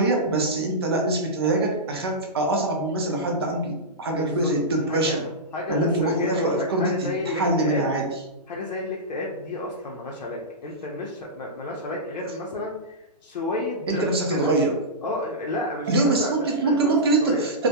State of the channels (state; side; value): normal; both; correlation -0.14